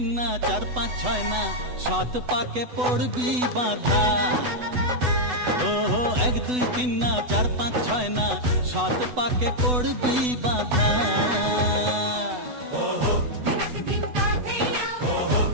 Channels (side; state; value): left; late; 8.1 ms